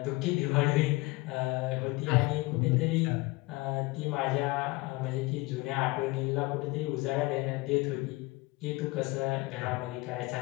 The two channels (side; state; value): right; quieter; 22.8 dB